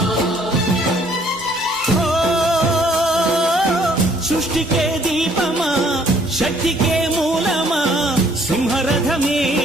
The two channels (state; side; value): normal; both; correlation 0.62